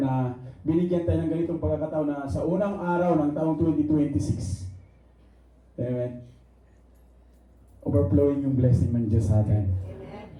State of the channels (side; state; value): both; identical; correlation 1.00